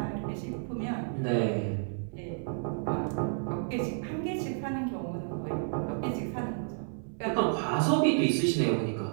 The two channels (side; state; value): left; silent; 57 dB below the other